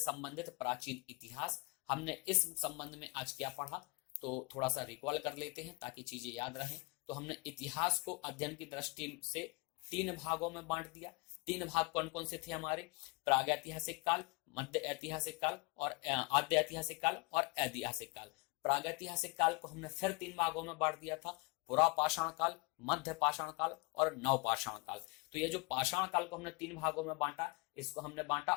प्राचीन इतिहास। हमने इस संबंध में आज क्या पढ़ा, तो थोड़ा सा रिकॉल कर लेते हैं ताकि चीजें याद रहें। तो हमने इतिहास को अध्ययन की दृष्टि से 3 भागों में बांट दिया। 3 भाग कौन कौन से थे हमारे, प्रागैतिहासिक काल, मध्य ऐतिहासिक काल और आद्य ऐतिहासिक काल और ऐतिहासिक काल। प्रागैतिहासिक काल को हमने फिर 3 भागों में बांट दिया था, पुरापाषाण काल, मध्य पाषाण काल और नवपाषाण काल। तो ये जो पाषाण काल को हमने 3 भागों में बांटा, इसको हमने बांटा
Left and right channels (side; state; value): right; quieter; 27.4 dB